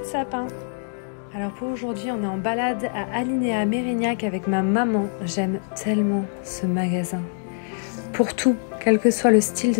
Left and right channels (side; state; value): right; silent; digital silence